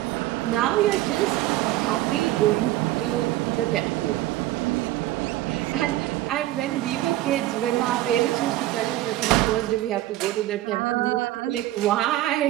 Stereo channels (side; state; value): left; quieter; 15.5 dB